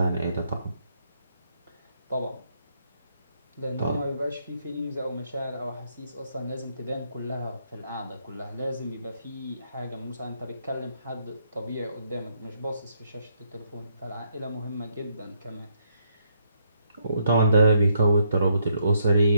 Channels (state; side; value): inverted; both; correlation -0.74